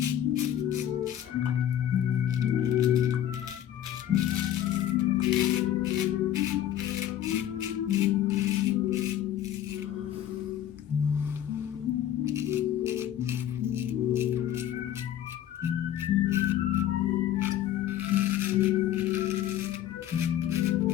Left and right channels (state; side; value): quieter; right; 11.3 dB